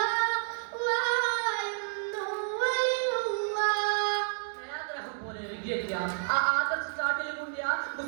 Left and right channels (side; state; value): left; silent; digital silence